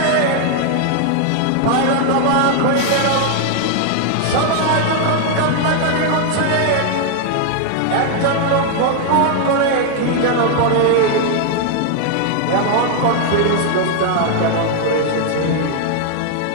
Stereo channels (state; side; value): different; both; correlation 0.00